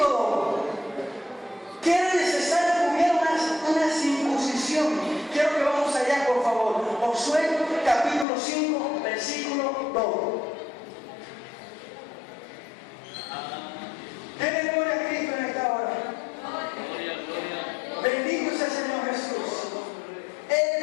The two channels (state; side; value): drops out; right; at 8.2 s